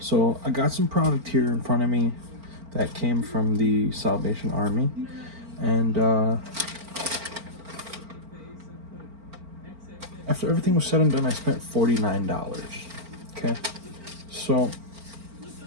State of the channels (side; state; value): left; late; 4.4 ms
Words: I got some product here in front of me that came from the Salvation Army, and after everything was said and done, I spent $49. Okay, so